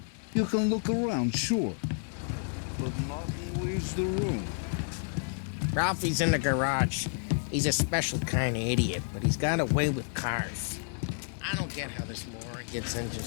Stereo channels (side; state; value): right; silent; 58 dB below the other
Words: You can look around, sure. But nothing leaves the room. Ralphie's in the garage. He's a special kind of idiot, but he's got a way with cars. I don't get how this moron gets in